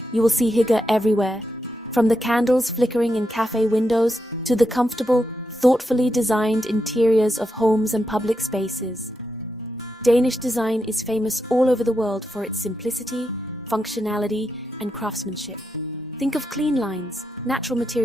you will see hygge everywhere, from the candles flickering in cafe windows to the comfortable, thoughtfully designed interiors of homes and public spaces. Danish design is famous all over the world for its simplicity, functionality, and craftsmanship. Think of clean lines, natural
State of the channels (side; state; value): both; normal; correlation 0.85